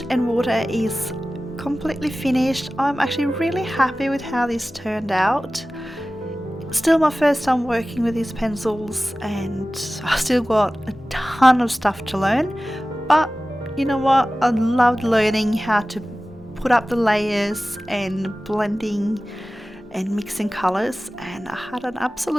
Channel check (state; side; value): normal; both; correlation 0.96